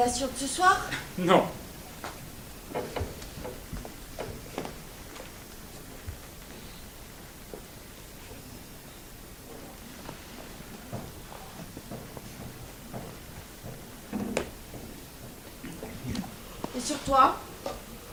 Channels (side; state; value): both; identical; correlation 1.00